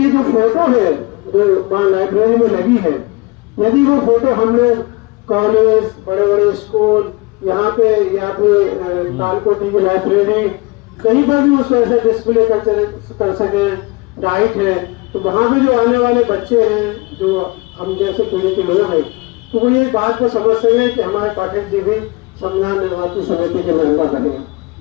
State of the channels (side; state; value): right; quieter; 24.9 dB